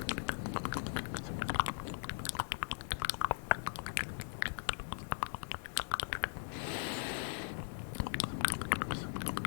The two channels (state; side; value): silent; right; digital silence